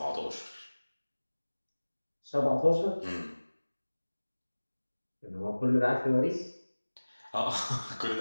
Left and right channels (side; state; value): both; inverted; correlation -1.00